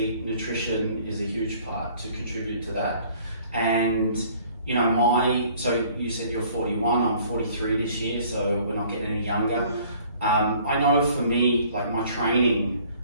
nutrition is a huge part to contribute to that. And, you know, so you said you're 41, I'm 43 this year, so we're not getting any younger. I know for me, like my training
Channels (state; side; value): inverted; both; correlation -0.56